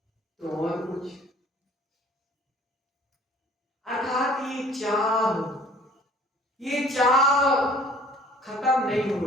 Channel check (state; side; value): normal; both; correlation 0.53